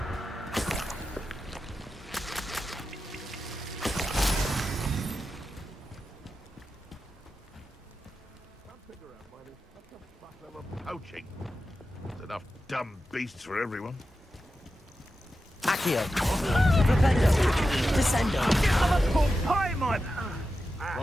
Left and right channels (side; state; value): both; normal; correlation 0.91